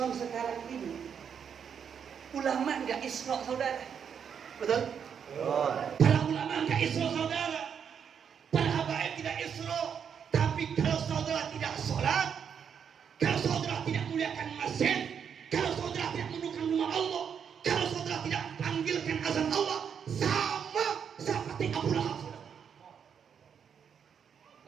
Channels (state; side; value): quieter; left; 7.5 dB